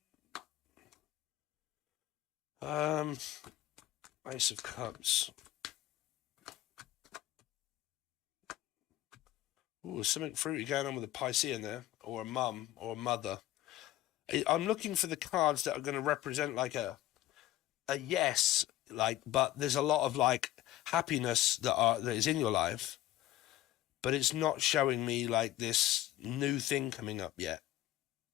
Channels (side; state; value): right; quieter; 14.1 dB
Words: and Ace of Cups. Ooh, there's something fruity going on with a Piscean there, or a mum, or a mother. I'm looking for the cards that are going to represent like a yes, like, but there's a lot of like happiness that is in your life, but it's not showing me like this new thing coming up yet.